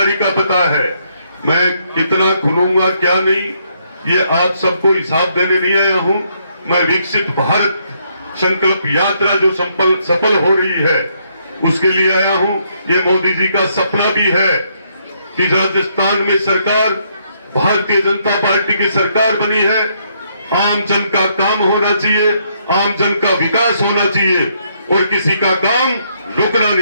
का पता है। मैं कितना खुलूंगा क्या नहीं, ये आप सबको हिसाब देने नहीं आया हूं। मैं विकसित भारत संकल्प यात्रा जो सफल हो रही है उसके लिए आया हूं। ये मोदी जी का सपना भी है कि राजस्थान में सरकार भारतीय जनता पार्टी की सरकार बनी है। आम जन का काम होना चाहिए, आम जन का विकास होना चाहिए और किसी का काम रुकना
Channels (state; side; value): inverted; both; correlation -0.73